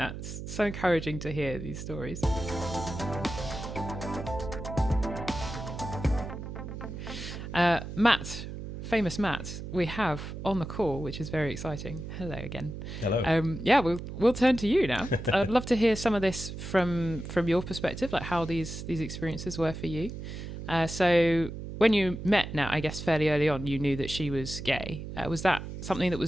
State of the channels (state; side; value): noise; right; hum, 8 dB below the sound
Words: It's so encouraging to hear these stories. Matt, famous Matt, we have on the call, which is very exciting. Hello again. Hello. We'll turn to you now. I'd love to hear some of this from your perspective, like how these experiences were for you. So when you met Nat, I guess fairly early on, you knew that she was gay. Was that something that